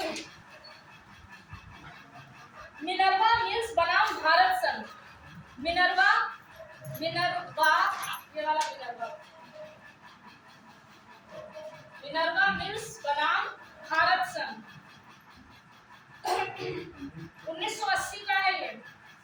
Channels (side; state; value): both; identical; correlation 1.00